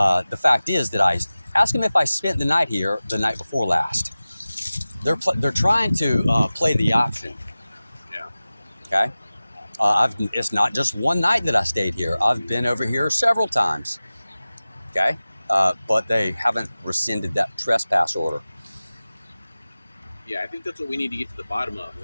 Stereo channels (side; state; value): both; inverted; correlation -0.97